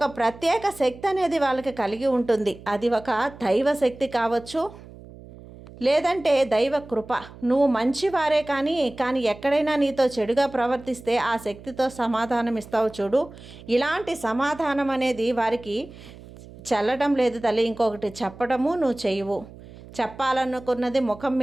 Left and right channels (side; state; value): right; noise; hum, 18 dB below the sound